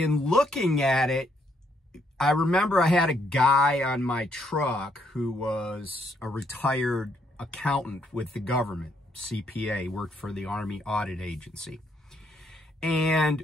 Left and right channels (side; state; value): both; normal; correlation 0.72